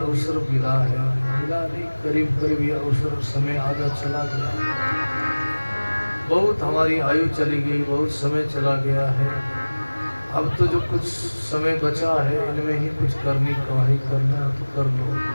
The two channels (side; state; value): both; inverted; correlation -1.00